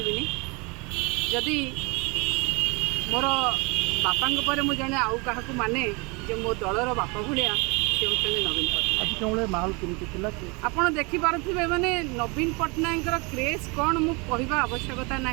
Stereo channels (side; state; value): left; quieter; 28.9 dB